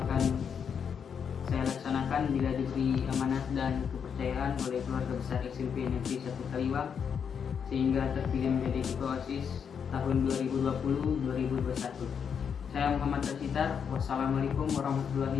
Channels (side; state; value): right; quieter; 7.1 dB